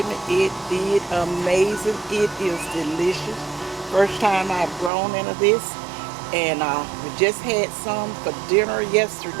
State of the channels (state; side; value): drops out; left; at 4.9 s